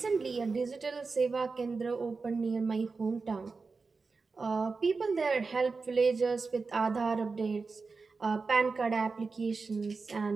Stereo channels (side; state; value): left; quieter; 4.3 dB